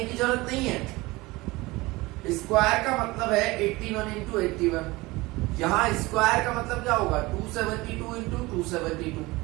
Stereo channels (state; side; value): quieter; left; 21.5 dB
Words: की जरूरत नहीं है. स्क्वायर का मतलब है 81 इंटू 81. यहाँ स्क्वायर का मतलब क्या होगा? 272 इंटू 272.